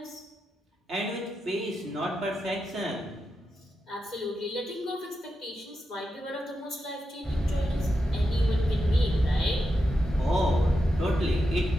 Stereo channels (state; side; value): normal; both; correlation 0.87